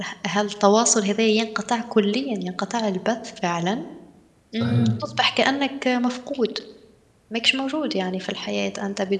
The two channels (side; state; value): both; identical; correlation 1.00